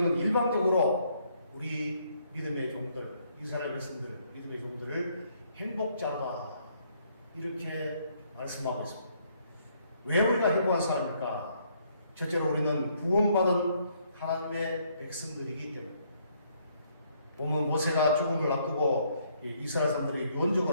일반적으로 우리 믿음의 종들, 이스라엘 백성들, 믿음의 종들을 행복자다 이렇게 말씀하고 있습니다. 왜 우리가 행복한 사람입니까? 첫째로 우리는 구원받은 하나님의 백성들이기 때문에 보면 모세가 죽음을 앞두고 이스라엘 사람들에게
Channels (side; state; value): both; inverted; correlation -0.69